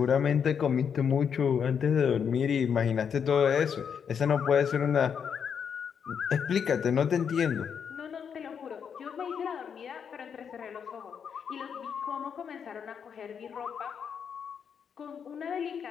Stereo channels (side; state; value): right; quieter; 7.2 dB